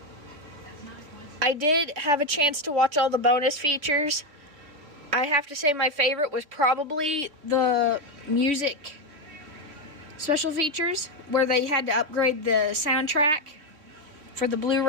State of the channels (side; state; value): left; late; 3.3 ms